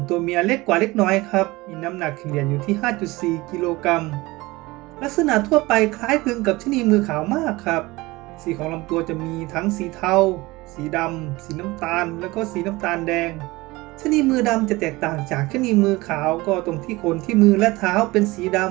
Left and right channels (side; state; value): left; quieter; 21.2 dB